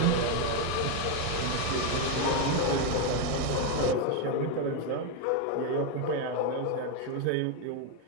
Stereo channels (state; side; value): different; both; correlation 0.02